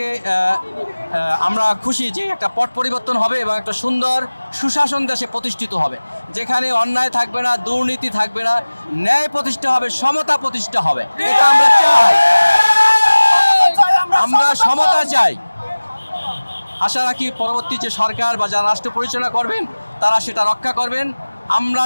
আমরা খুশি যে একটা পট পরিবর্তন হবে এবং একটা সুন্দর সুশাসন দেশে প্রতিষ্ঠিত হবে, যেখানে অন্যায় থাকবে না, দুর্নীতি থাকবে না, ন্যায় প্রতিষ্ঠা হবে, সমতা প্রতিষ্ঠা হবে। এটা আমরা চাই, আমরা সমতা চাই। আশা রাখি পরবর্তী যে সরকার বা যারা রাষ্ট্র পরিচালনা করবেন তারা সেটা রক্ষা করবেন। আমরা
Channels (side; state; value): both; inverted; correlation -1.00